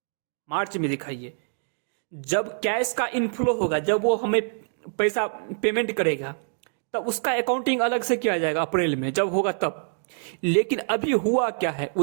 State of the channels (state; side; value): silent; left; digital silence